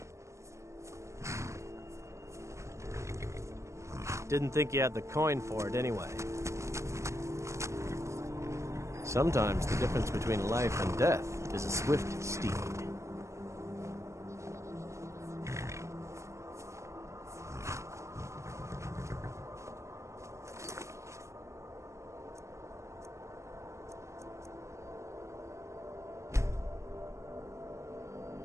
Didn't think you had the coin for it anyway. Sometimes the difference between life and death is a swift steed.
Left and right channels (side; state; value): left; late; 0.14 ms